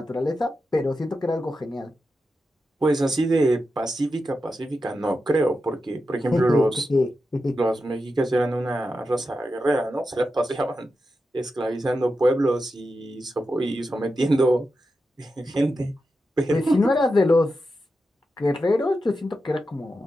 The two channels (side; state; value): both; normal; correlation 0.89